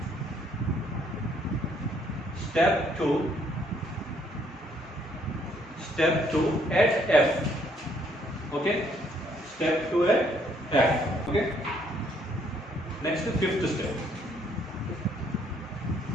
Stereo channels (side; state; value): both; normal; correlation 0.67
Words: step 2 at F. Okay, step 2 at F. Okay, next to fifth step.